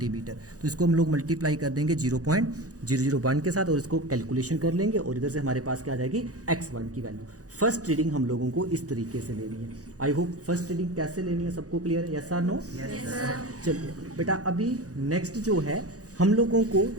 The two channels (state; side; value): late; left; 0.67 ms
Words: तो इसको हम लोग मल्टीप्लाई कर देंगे 0.001 के साथ और इसको कैलकुलेशन कर लेंगे और इधर से हमारे पास क्या आ जाएगी x1 की वैल्यू। फर्स्ट रीडिंग हम लोगों को इस तरीके से लेनी है। आई होप फर्स्ट रीडिंग कैसे लेनी है सबको क्लियर है, यस और नो? चलिए बेटा, अभी नेक्स्ट जो है हम लोगों को